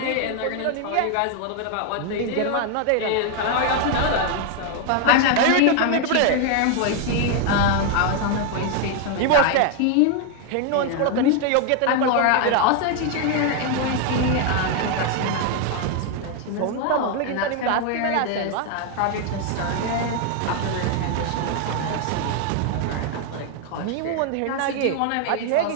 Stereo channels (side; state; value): both; different; correlation 0.00